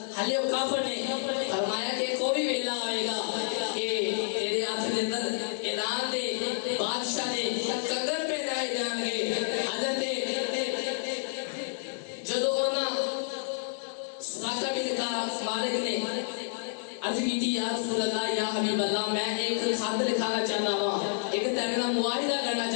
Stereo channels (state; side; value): silent; right; 58 dB below the other